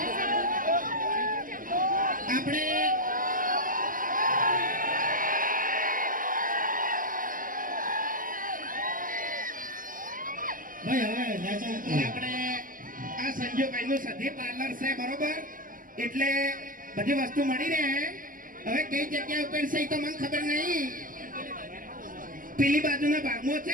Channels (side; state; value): left; late; 0.40 ms